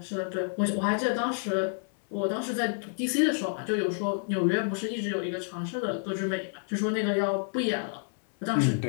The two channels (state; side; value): silent; right; 59 dB below the other